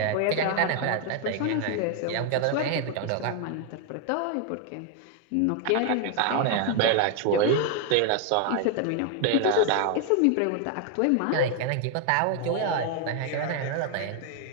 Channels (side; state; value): both; different; correlation 0.00